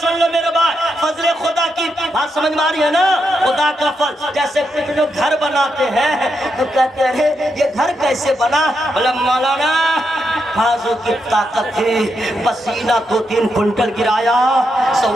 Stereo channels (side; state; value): both; normal; correlation 0.82